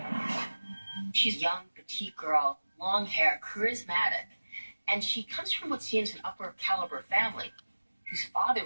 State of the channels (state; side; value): inverted; both; correlation -1.00